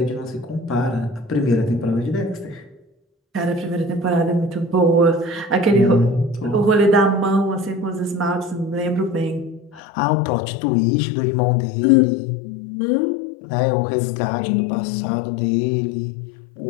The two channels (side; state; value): right; drops out; at 9.8 s